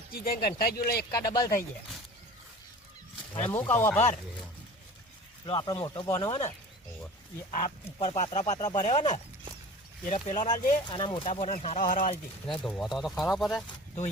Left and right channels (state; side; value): normal; both; correlation 0.40